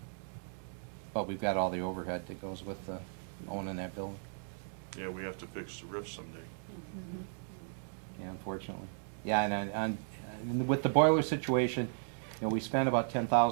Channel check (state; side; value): silent; left; 54 dB below the other